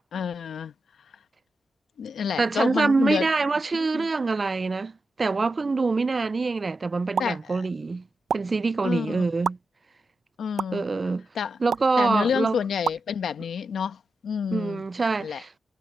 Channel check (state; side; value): normal; both; correlation 0.89